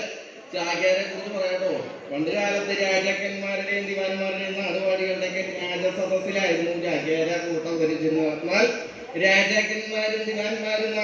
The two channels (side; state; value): both; identical; correlation 1.00